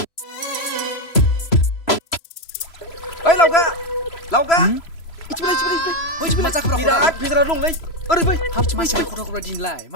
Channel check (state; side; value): late; right; 3.0 ms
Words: ओइ लावगा इथिबाय मा जाखो बिराद भेजाला दंलै ओरै फै हाब मानसिया खथा दिनलाय